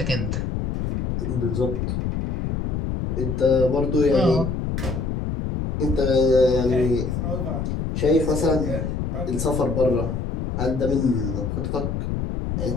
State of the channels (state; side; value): noise; left; rumble, 2 dB below the sound